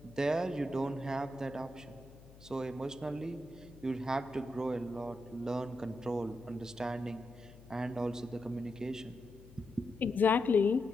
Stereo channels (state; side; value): noise; left; hum, 20 dB below the sound